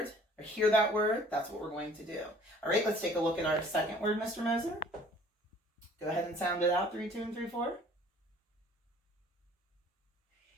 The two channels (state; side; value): normal; both; correlation 0.53